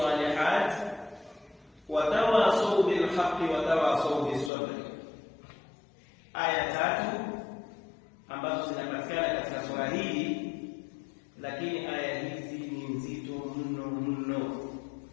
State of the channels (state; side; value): drops out; right; at 4.5 s